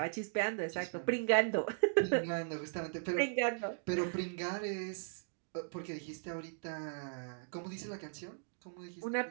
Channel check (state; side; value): silent; left; digital silence